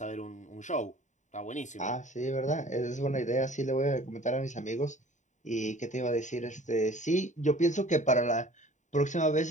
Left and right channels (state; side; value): late; right; 0.35 ms